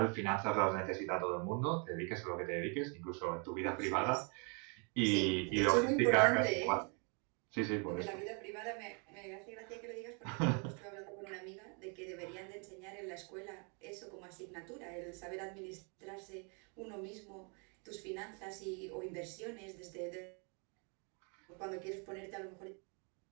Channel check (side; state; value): left; quieter; 36.4 dB